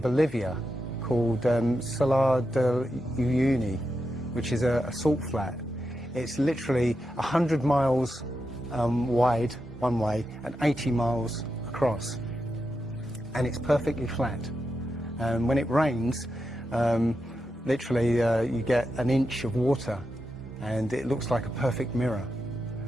called Salar de Uyuni, which is a salt flat. It's literally 100 miles wide one way and 80 miles across. And it's perfectly flat. When it rains, literally you get an inch of water and it looks like a perfect mirror.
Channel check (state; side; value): normal; both; correlation 0.87